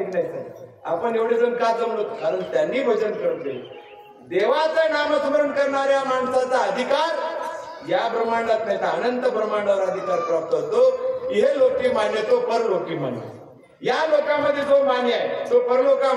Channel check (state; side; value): identical; both; correlation 1.00